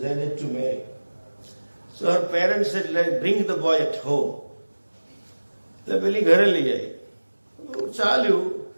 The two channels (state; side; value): inverted; both; correlation -1.00